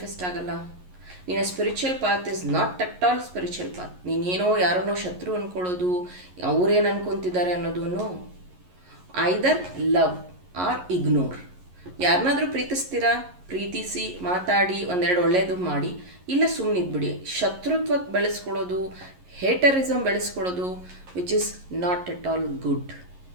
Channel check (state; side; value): late; left; 11 ms